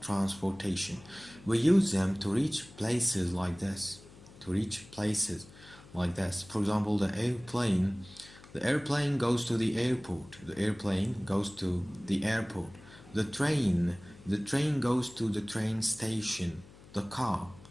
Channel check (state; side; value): noise; left; hum, 21 dB below the sound